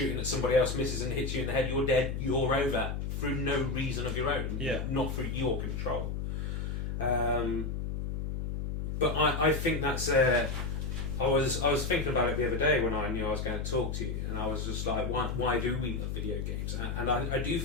at somebody else misses and hits you in the head. You're dead. You're over through no reason of your own. Yeah. Not through your control. But I think that's I was thinking about it the other day when I knew I was going to talk to you, and I was just like, why do we love video games? And I do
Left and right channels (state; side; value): noise; left; hum, 3 dB below the sound